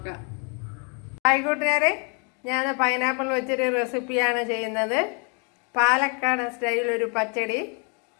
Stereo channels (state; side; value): quieter; right; 36.4 dB